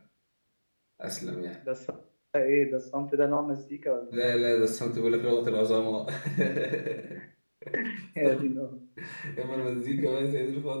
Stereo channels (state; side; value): inverted; both; correlation -1.00